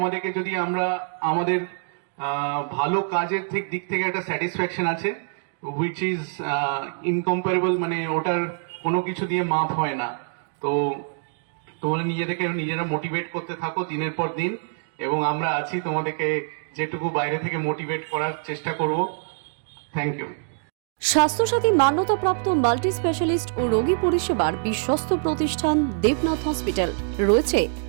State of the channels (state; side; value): silent; left; digital silence